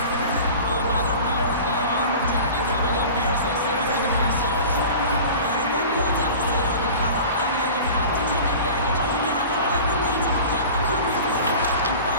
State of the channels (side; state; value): both; inverted; correlation -0.38